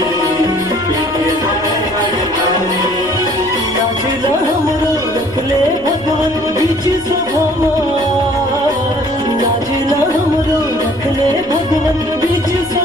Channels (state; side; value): noise; left; rumble, 20 dB below the sound